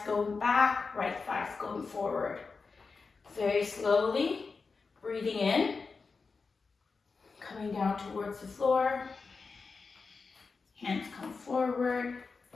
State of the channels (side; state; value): right; quieter; 4.6 dB